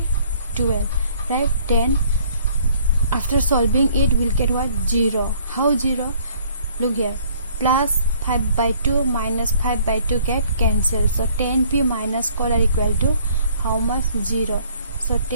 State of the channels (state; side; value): inverted; both; correlation -0.58